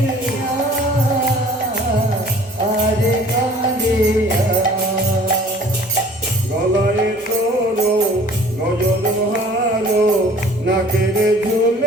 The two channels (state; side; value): normal; both; correlation 0.50